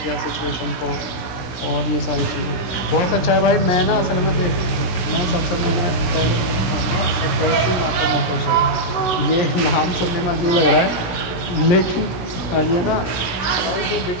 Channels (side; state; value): right; late; 16 ms